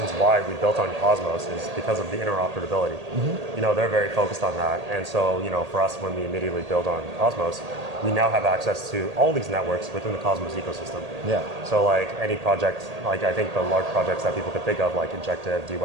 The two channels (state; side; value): late; left; 1.8 ms